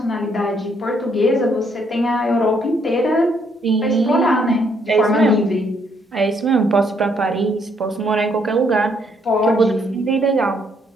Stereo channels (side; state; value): both; normal; correlation 0.70